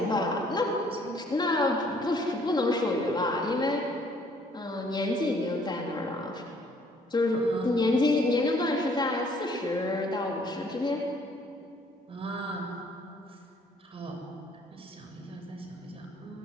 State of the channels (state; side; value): normal; both; correlation 0.61